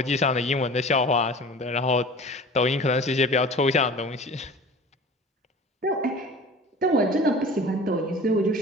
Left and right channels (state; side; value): normal; both; correlation 0.40